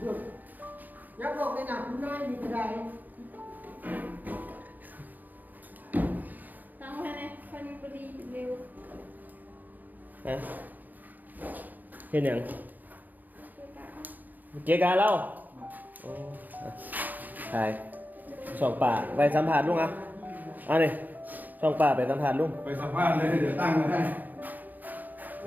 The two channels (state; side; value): late; left; 0.084 ms